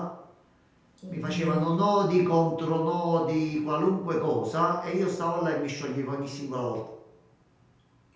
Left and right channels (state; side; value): identical; both; correlation 1.00